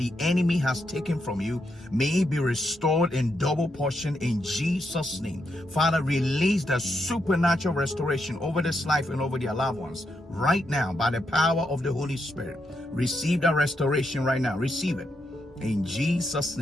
enemy has taken from you may be restored in double portion in Jesus' name. Father, release the supernatural restoration over this life and over their loved ones right now by the power of the Holy Spirit. Receive that restoration right now. Receive it. In Jesus'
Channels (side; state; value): both; normal; correlation 0.81